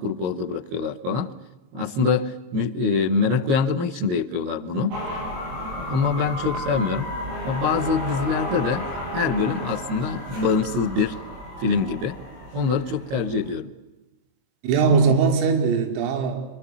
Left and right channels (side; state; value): left; late; 22 ms